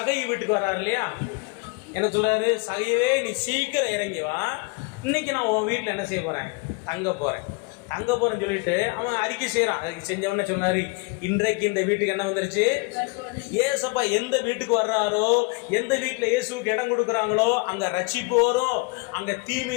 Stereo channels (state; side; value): quieter; right; 28.5 dB